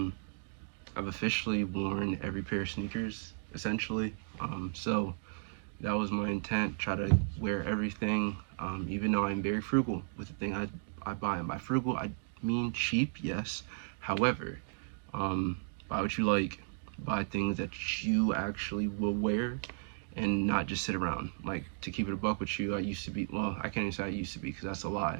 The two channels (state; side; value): silent; left; digital silence